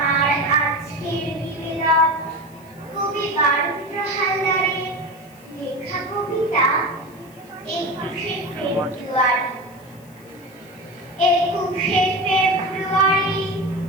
আজকের নিবেদন কবি বারুদ্র হালদারের লেখা কবিতা 21শে ফেব্রুয়ারি। 21শে ফেব্রুয়ারি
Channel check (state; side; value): noise; left; hiss, 26 dB below the sound